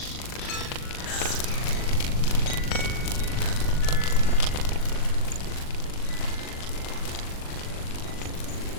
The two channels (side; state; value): right; late; 40 ms